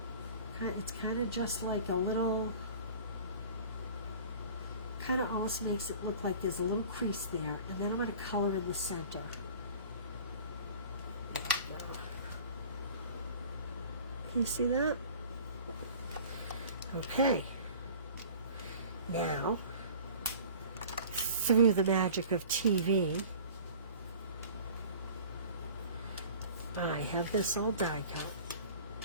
It's kind of just like a little, kind of almost makes it look like there's a little crease there, and then I'm going to color in the center. There we go. Can you see that? Okay. Now, through the magic of TV, I have this all die cut.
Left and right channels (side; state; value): both; inverted; correlation -0.44